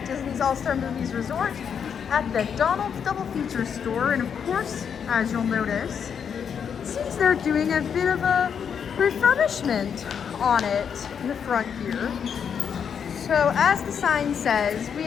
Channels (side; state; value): right; quieter; 7.4 dB